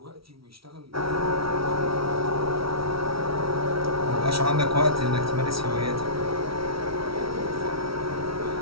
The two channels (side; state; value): left; late; 0.75 ms